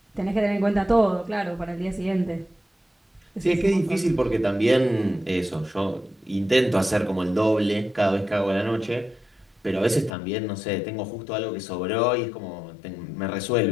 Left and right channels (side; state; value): right; drops out; at 10.1 s